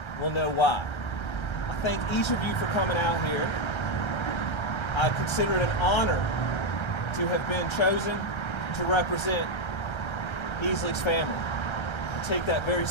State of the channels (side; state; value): right; late; 1.3 ms